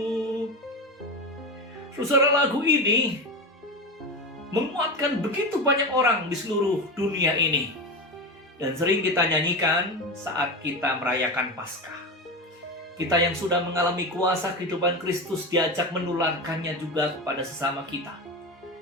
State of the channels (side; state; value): both; normal; correlation 0.21